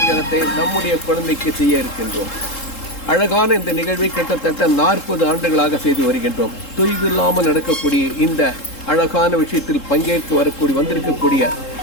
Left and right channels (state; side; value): late; right; 3.7 ms